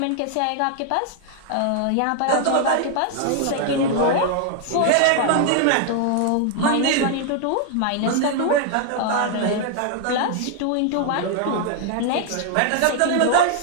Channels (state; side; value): different; both; correlation 0.00